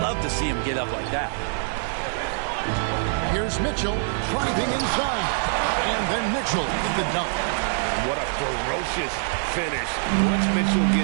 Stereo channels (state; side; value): silent; left; 62 dB below the other